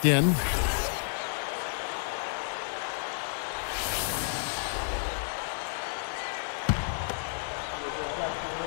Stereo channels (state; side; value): silent; right; digital silence